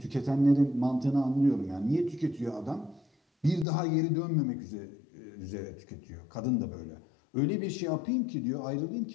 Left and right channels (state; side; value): drops out; right; at 3.7 s